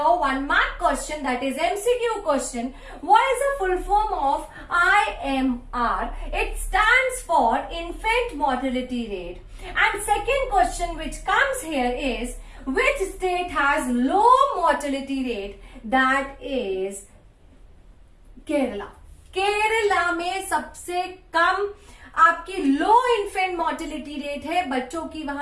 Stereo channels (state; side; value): identical; both; correlation 1.00